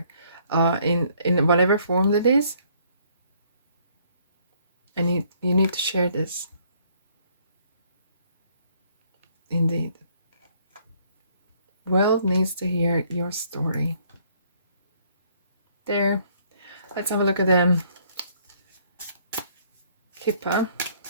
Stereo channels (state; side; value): inverted; both; correlation -0.64